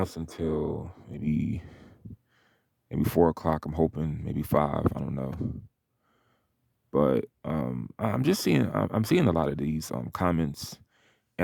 until maybe 4 o'clock. I'm hoping maybe five. I don't know, but I'm seeing a lot of these comments,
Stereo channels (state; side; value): identical; both; correlation 1.00